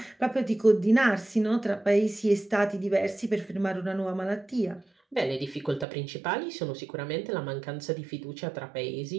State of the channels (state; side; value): drops out; left; at 5.9 s